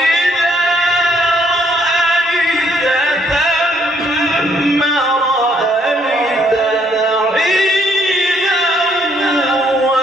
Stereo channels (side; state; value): both; normal; correlation 0.68